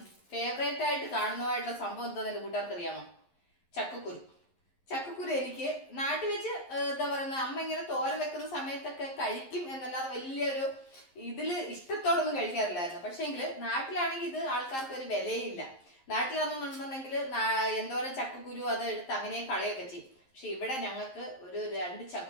ഫേവറേറ്റ് ആയിട്ട് കാണുന്നതായിട്ടുള്ള സംഭവം എന്താണെന്ന് എൻ്റെ കൂട്ടുകാർക്ക് അറിയാമോ? ചക്കക്കുരു. ചക്കക്കുരു എനിക്ക് നാട്ടിൽ വെച്ച് എന്താ പറയുന്നത്, അമ്മ ഇങ്ങനെ തോര വെക്കുന്ന സമയത്തൊക്കെ കഴിക്കും എന്നല്ലാതെ വലിയൊരു ഇതിൽ ഇഷ്ടത്തോടൊന്നും കഴിക്കാറില്ലായിരുന്നു. പക്ഷേങ്കിൽ നാട്ടിലാണെങ്കിൽ ഇത് ആൾക്കാർക്ക് ഒരു വിലയില്ല. നാട്ടിലാണെന്നുണ്ടെന്നുണ്ടെങ്കിൽ എന്തോരം ചക്കക്കുരു അത് എടുത്ത് അങ്ങനെ കളയൊക്കെ ചെയ്യും. പക്ഷെ ഇവിടെ ഞങ്ങൾക്ക് ഒരു 2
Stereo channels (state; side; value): late; right; 11 ms